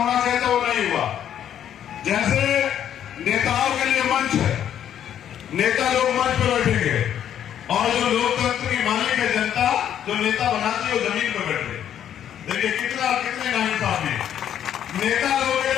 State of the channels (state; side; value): quieter; right; 10.0 dB